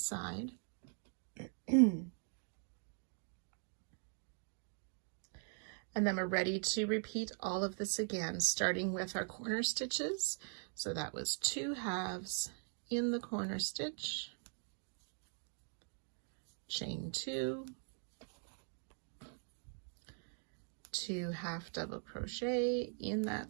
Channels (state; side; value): silent; left; 50 dB below the other